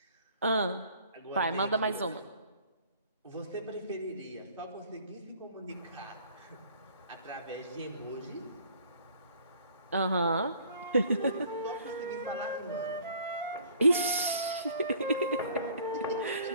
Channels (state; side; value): inverted; both; correlation -0.54